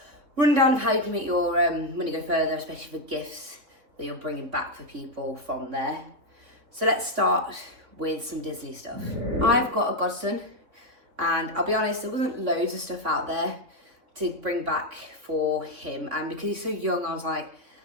rundown of how you can make your money go further, especially for gifts that you're bringing back for people from there. So let's start with some Disney stuff. I've got a godson, and I'll be honest, there wasn't loads of stuff out there to bring back for him, and because he's so young, I was like,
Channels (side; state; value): left; late; 3.8 ms